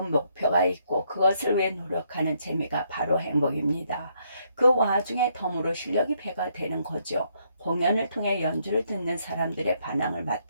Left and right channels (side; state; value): both; inverted; correlation -0.73